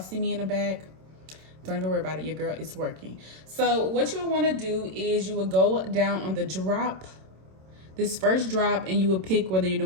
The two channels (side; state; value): left; late; 27 ms